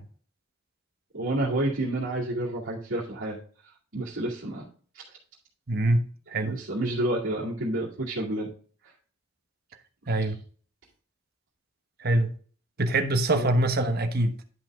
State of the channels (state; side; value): normal; both; correlation 0.55